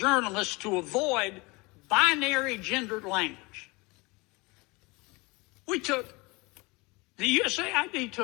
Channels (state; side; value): quieter; right; 25.5 dB